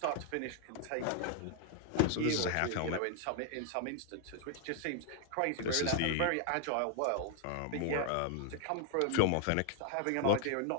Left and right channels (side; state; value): both; different; correlation 0.00